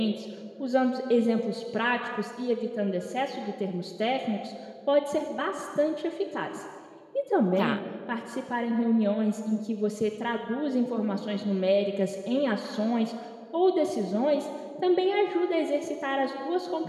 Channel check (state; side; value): identical; both; correlation 1.00